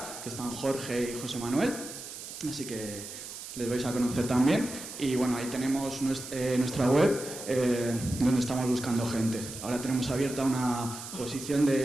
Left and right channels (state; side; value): noise; right; hiss, 11 dB below the sound